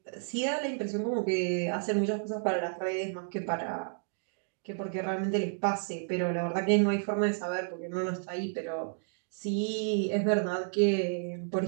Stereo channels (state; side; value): silent; left; digital silence